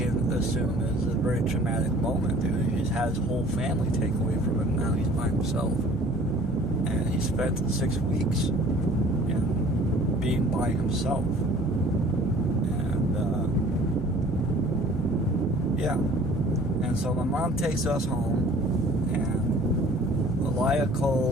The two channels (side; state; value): both; normal; correlation 0.50